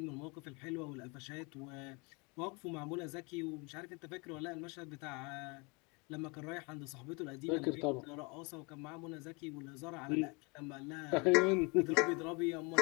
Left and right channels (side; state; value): right; quieter; 29.8 dB